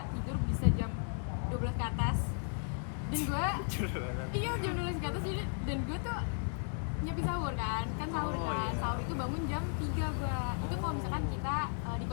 tidur bisa jam 12 ke atas. Dan gue iya jam 12 ke atas jadi, dan gue tuh nyiapin sahur kan sahur Oh, kan iya. sahur itu bangun jam 3 gue. Itu kalau misalkan kita di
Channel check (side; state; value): right; silent; 54 dB below the other